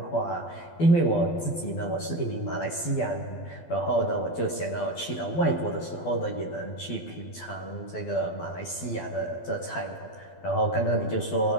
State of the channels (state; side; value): late; right; 12 ms